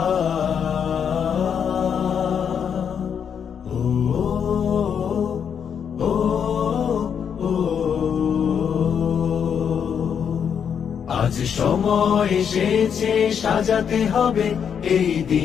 সময় এসেছে সাজাতে হবে এই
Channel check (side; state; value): right; quieter; 7.6 dB